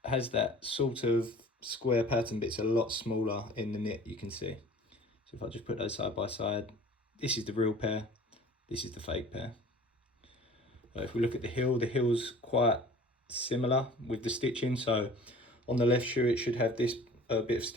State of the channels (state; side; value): normal; both; correlation 0.46